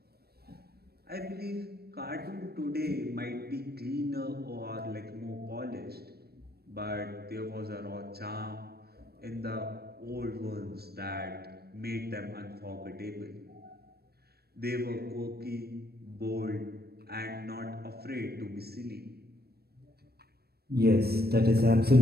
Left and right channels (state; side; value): late; left; 0.46 ms